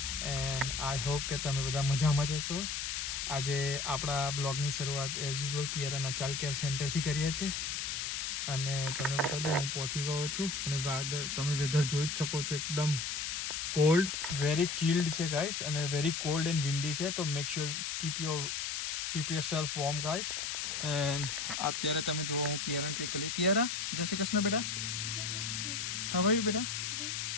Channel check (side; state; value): left; noise; hiss, 2 dB below the sound